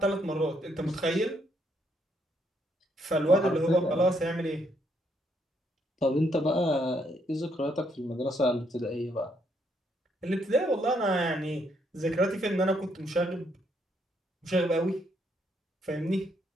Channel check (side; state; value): both; normal; correlation 0.73